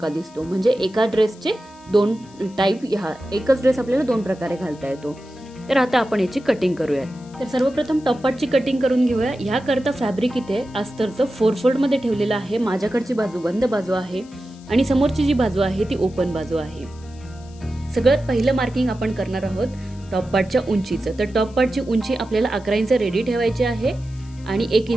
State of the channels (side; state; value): left; noise; hiss, 26 dB below the sound